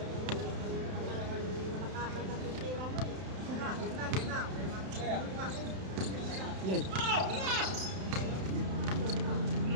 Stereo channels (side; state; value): left; late; 31 ms